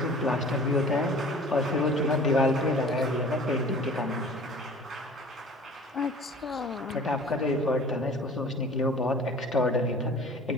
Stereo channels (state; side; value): normal; both; correlation 0.45